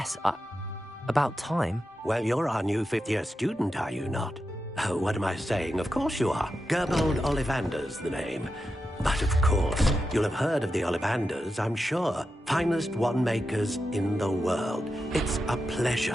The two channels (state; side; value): normal; both; correlation 0.89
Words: about time? Well, you're our new fifth-year student, are you not? Oh, what am I saying? Of course you are. Gerbold Ollivander's the name. But of course, you'll have heard of the Ollivanders, I'm sure. Finest wand makers in the world. It's a